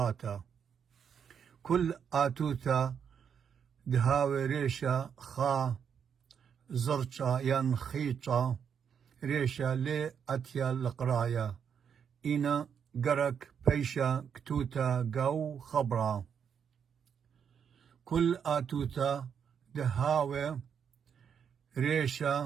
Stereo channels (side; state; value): left; quieter; 7.5 dB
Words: كل آتوتا دهاوي ريشا خا زرشا ينخيشا ريشا لي أتيا القرايا إنا قرك بيشا كتوتا قو خبرا كل آتوتا دهاوي